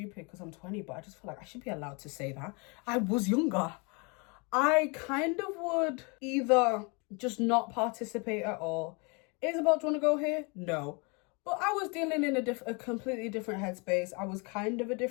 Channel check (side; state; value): right; quieter; 31.5 dB